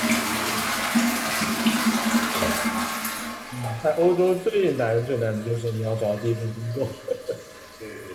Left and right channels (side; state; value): both; identical; correlation 1.00